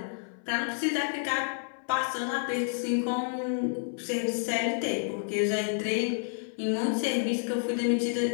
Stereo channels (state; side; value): silent; right; 58 dB below the other